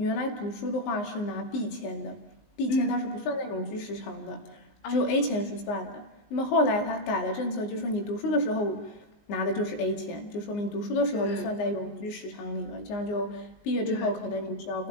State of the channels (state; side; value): late; right; 19 ms